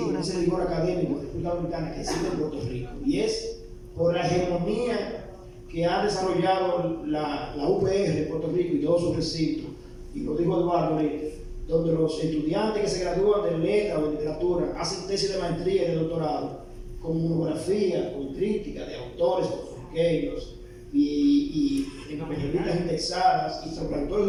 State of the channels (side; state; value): both; identical; correlation 1.00